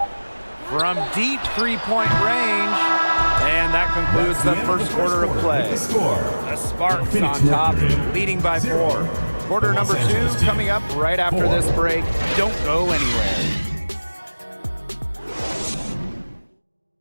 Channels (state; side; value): inverted; both; correlation -1.00